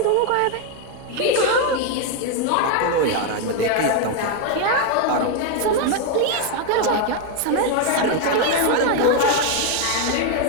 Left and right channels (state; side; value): different; both; correlation 0.01